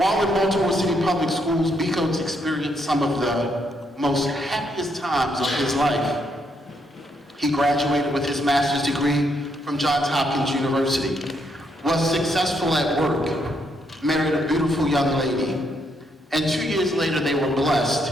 in Baltimore City Public Schools, Becoats experienced some of the most happiest times of his life. He graduated with his master's degree from Johns Hopkins University, was successful at work, married a beautiful young lady, and 2 years later they were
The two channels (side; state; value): both; normal; correlation 0.75